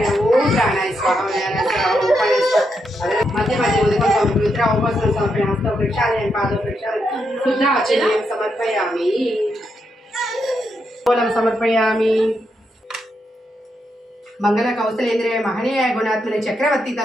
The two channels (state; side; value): normal; both; correlation 0.82